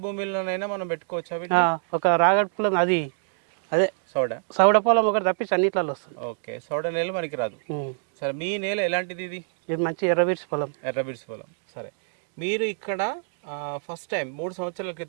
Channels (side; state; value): left; silent; digital silence